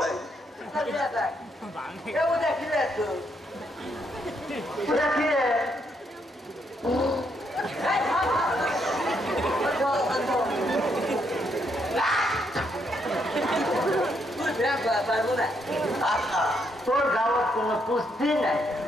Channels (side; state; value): both; normal; correlation 0.75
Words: তোর গাওয়ার কোনো পুষ্টি নাই